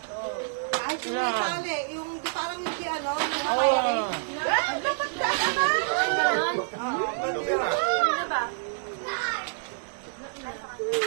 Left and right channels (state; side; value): silent; left; digital silence